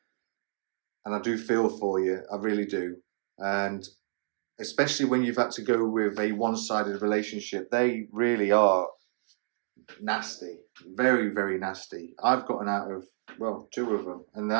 and I do feel for you, I really do, and especially when you've had to go with a one-sided relationship, they really are nasty, very, very nasty. I've gotten out of, 2 of them, and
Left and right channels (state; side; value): silent; left; digital silence